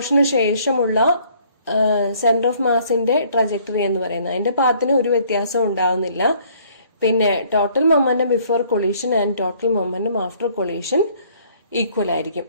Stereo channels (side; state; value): both; inverted; correlation -0.60